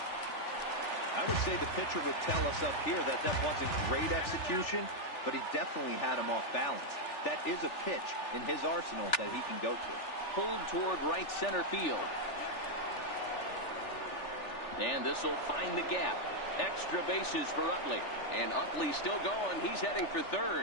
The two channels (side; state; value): right; late; 3.4 ms